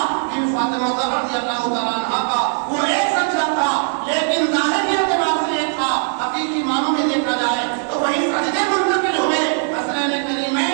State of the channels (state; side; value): silent; left; 59 dB below the other